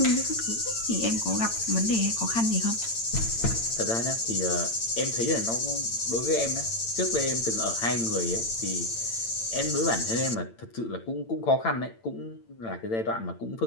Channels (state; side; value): late; right; 8.9 ms